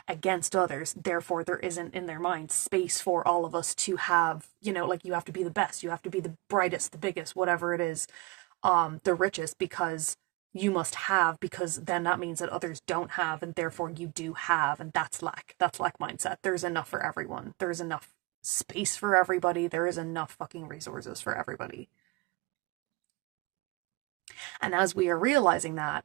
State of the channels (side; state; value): left; quieter; 24.1 dB